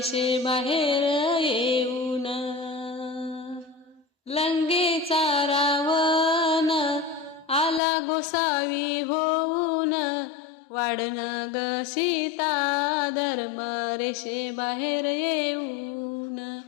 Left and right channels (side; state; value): right; drops out; at 7.8 s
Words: बाहेर येऊन। लंकेचा रावण आला गोसावी होऊन, वाढन ग सीता धर्म रेषे बाहेर येऊन,